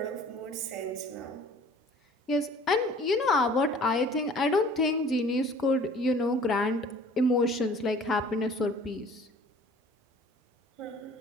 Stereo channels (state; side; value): normal; both; correlation 0.50